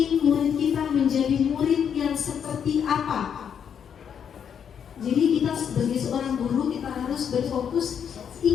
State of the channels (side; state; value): right; quieter; 7.9 dB